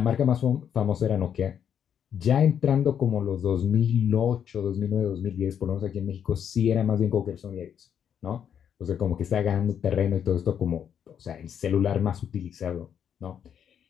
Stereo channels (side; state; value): right; quieter; 8.5 dB